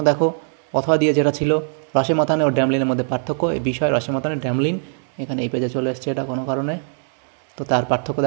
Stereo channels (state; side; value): silent; left; digital silence